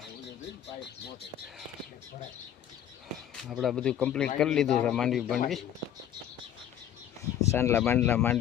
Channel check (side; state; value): right; quieter; 10.4 dB